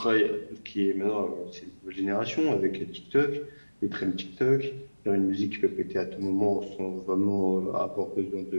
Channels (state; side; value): inverted; both; correlation -1.00